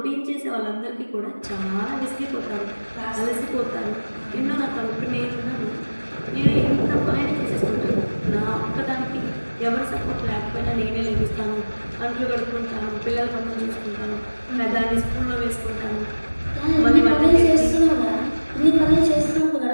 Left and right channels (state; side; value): inverted; both; correlation -1.00